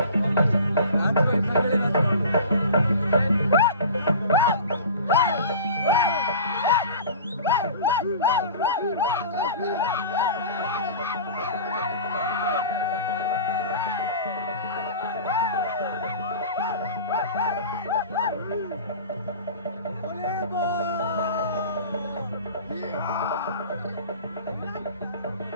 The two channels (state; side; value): inverted; both; correlation -0.38